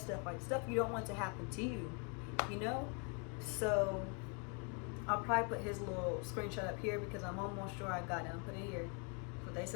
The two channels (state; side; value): quieter; right; 36.9 dB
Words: like stuff you don't want to happen to you, you know? So I'll probably put his little screenshot up here because I'm almost sure I got him. Put it here. That's what they